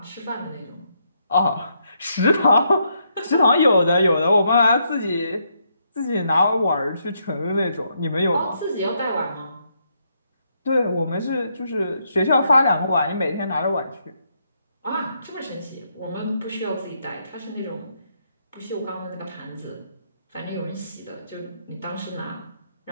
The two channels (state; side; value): inverted; both; correlation -0.76